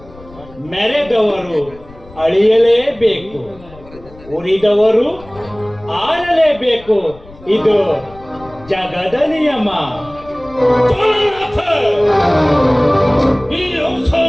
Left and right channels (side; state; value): left; noise; rumble, 22 dB below the sound